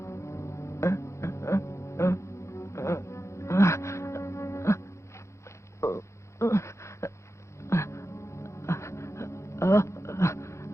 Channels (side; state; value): right; late; 0.14 ms